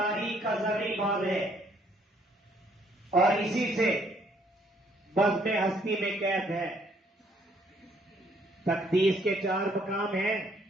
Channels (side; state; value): both; normal; correlation 0.66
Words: کا زرعی باب ہے، اور اسی سے بزم ہستی میں قید ہے۔ تقدیس کے 4 مقام ہیں: